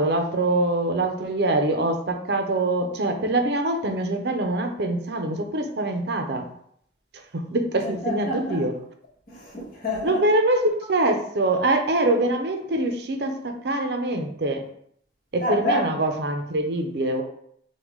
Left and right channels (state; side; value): normal; both; correlation -0.03